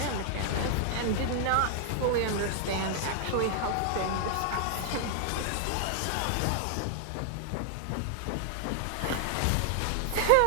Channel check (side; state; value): both; different; correlation 0.00